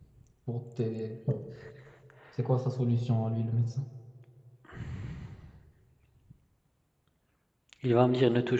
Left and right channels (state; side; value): identical; both; correlation 1.00